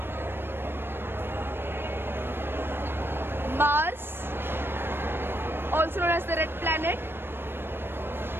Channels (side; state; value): left; late; 0.10 ms